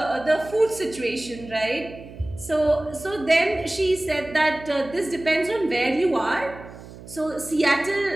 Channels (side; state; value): right; noise; hum, 16 dB below the sound